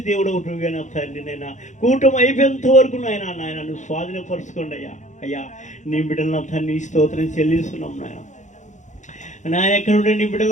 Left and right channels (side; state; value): right; late; 0.35 ms